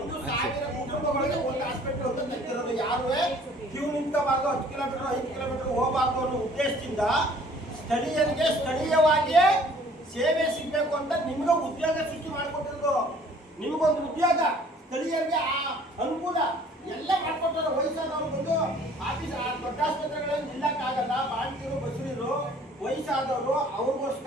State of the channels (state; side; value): normal; both; correlation 0.54